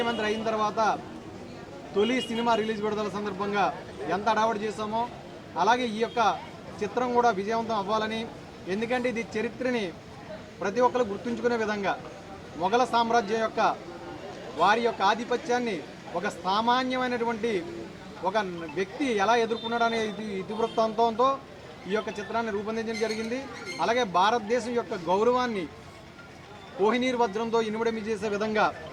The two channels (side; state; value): both; identical; correlation 1.00